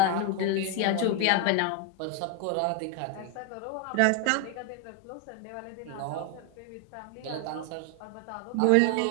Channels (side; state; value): both; different; correlation 0.01